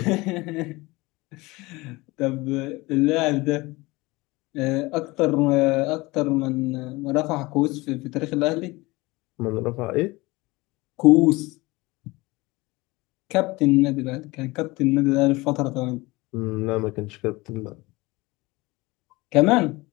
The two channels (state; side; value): quieter; right; 22.2 dB